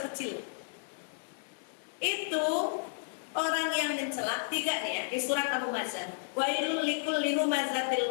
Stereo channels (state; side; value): silent; right; digital silence